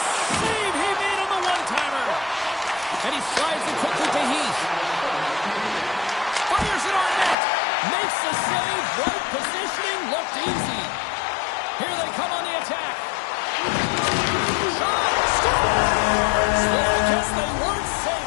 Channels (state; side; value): drops out; right; at 7.4 s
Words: save he made on the one-timer. And he slides it quickly to Heath. Fires it on net. Makes the save. Right positioning. Looked easy. Here they come on the attack. Shot. Score. I guess they weren't